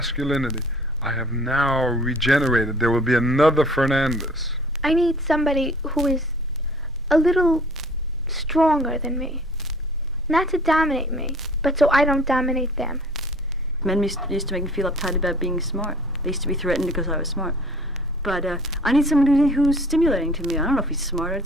I have now regenerated. There will be another Fernandez. I need somebody who is a little stronger than me. Not to dominate me, but so I don't dominate them. Men used to make me feel uptight about being smart. They used to be threatened because I was smart. But I need someone who's stimulating to me. I don't know if he's smart.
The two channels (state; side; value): normal; both; correlation 0.51